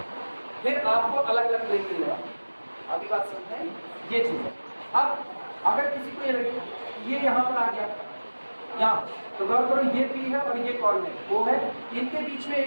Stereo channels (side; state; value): both; inverted; correlation -1.00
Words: फिर आपको अलग अलग प्लेन मिलेगा। अभी बात समझते हैं, ये चीज़ है। अब अगर किसी को ये लगे ये यहाँ पर आ गया यहाँ, तो गौर करो ये पी है और ये कॉल है, वो है, इनके बीच में